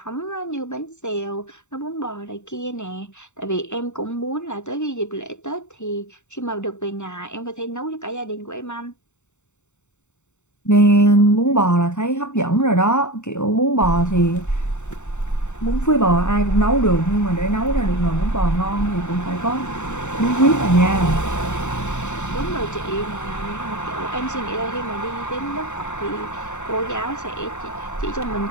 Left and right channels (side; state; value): right; late; 0.84 ms